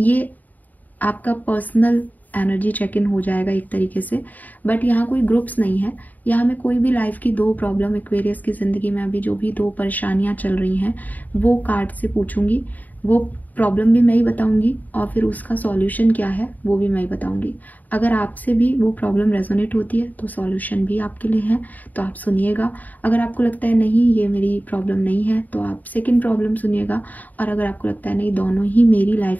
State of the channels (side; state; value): right; late; 0.081 ms